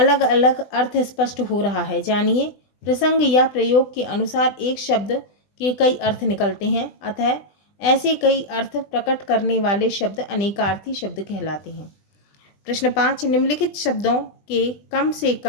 अलग अर्थ स्पष्ट हो रहा है। जानिए। प्रसंग या प्रयोग के अनुसार एक शब्द के कई अर्थ निकलते हैं, अतः ऐसे कई अर्थ प्रकट करने वाले शब्द अनेकार्थी शब्द कहलाते हैं। प्रश्न 5, निम्नलिखित शब्दों के कम से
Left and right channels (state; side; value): late; right; 20 ms